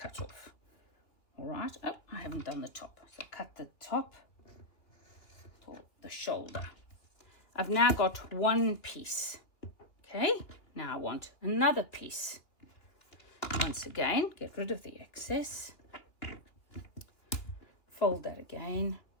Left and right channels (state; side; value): late; right; 2.9 ms